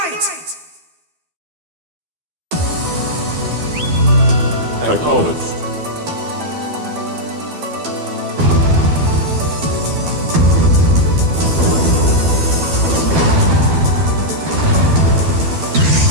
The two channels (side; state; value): left; late; 12 ms